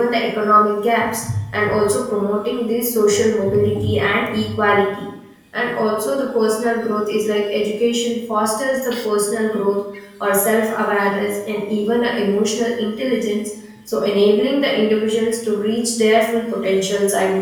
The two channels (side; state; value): both; identical; correlation 1.00